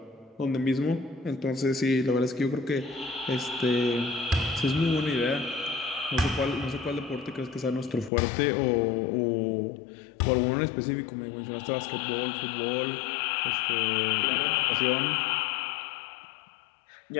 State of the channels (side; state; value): right; drops out; at 8.1 s